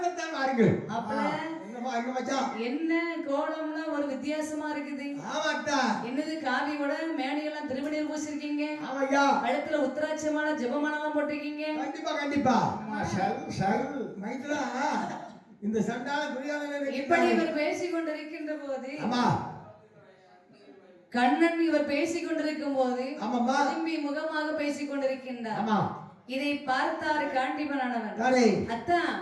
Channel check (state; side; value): identical; both; correlation 1.00